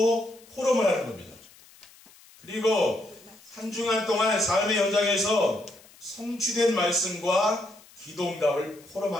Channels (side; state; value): left; noise; hiss, 25 dB below the sound